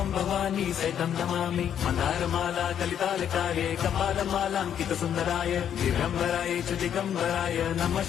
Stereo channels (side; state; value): right; quieter; 9.3 dB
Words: भवानी सहितं नमामि। मन्दारमाला कलितालकाये कपालमालाङ्कितसुन्दराय दिगम्बराय च दिगम्बराय नमः